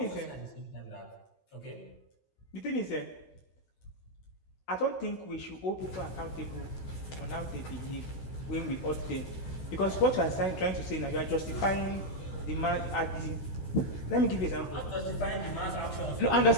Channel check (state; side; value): late; right; 16 ms